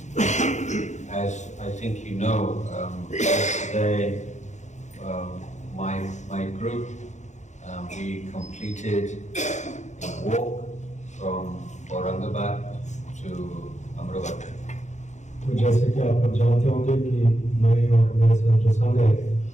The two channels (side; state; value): right; late; 0.34 ms